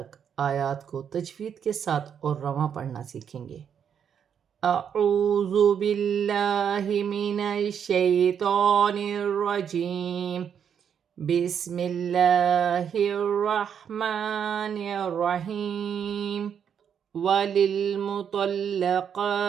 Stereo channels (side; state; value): left; quieter; 8.0 dB